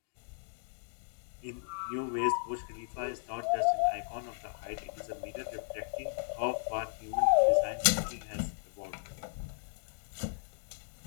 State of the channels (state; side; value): silent; right; digital silence